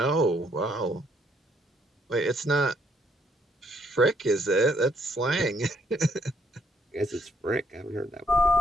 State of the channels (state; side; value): normal; both; correlation 0.69